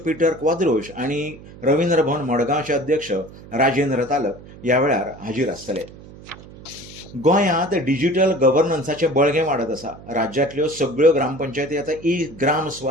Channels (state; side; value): noise; right; hum, 18 dB below the sound